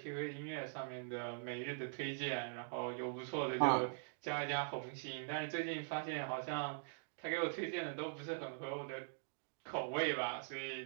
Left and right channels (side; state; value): left; silent; digital silence